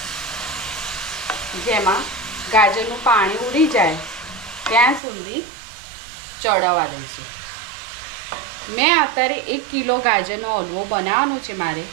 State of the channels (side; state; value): left; drops out; at 5.0 s